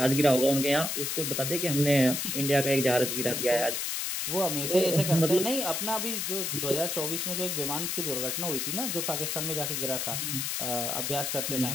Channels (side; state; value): left; noise; hiss, 1 dB below the sound